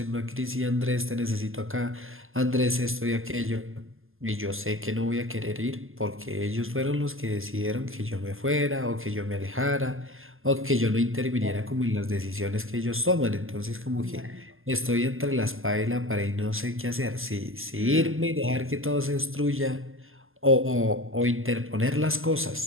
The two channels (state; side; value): late; left; 0.60 ms